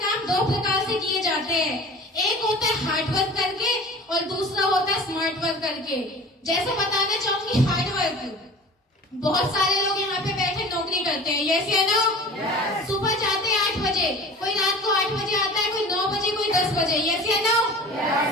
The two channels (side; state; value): both; normal; correlation 0.40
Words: 2 प्रकार से किए जाते हैं। एक होता है हार्ड वर्क करके और दूसरा होता है स्मार्ट वर्क करके। जैसे बताना चाहूंगी हार्ड वर्क, बहुत सारे लोग यहाँ पे बैठे नौकरी करते हैं। यस या नो? सुबह जाते हैं 8 बजे, कोई रात को 8 बजे आता है, कोई 9 बजे, कोई 10 बजे। यस या नो?